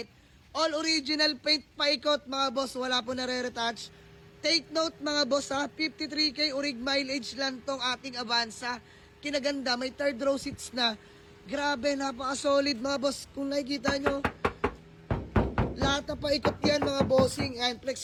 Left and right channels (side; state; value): both; identical; correlation 1.00